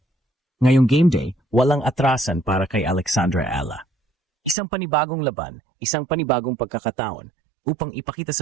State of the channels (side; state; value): left; drops out; at 4.5 s